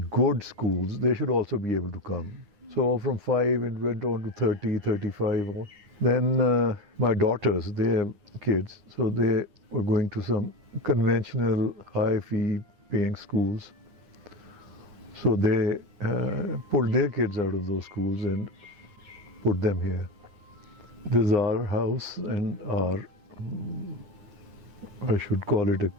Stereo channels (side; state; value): left; late; 9.8 ms